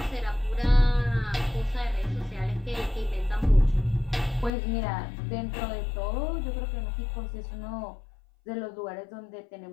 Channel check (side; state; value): right; drops out; at 4.5 s